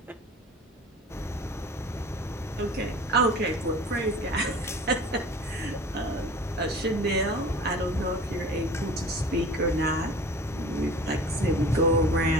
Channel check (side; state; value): both; normal; correlation 0.41